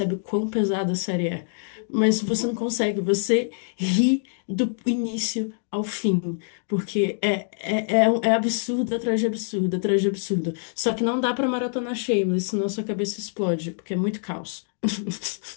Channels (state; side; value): silent; right; digital silence